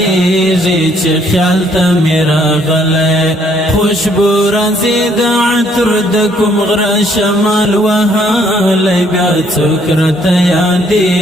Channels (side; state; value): both; normal; correlation 0.66